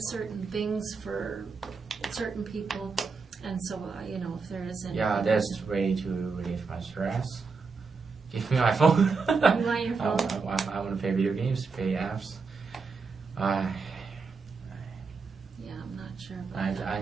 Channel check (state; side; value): quieter; left; 4.7 dB